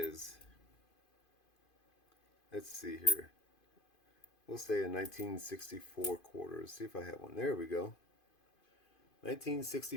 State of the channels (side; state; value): right; late; 2.5 ms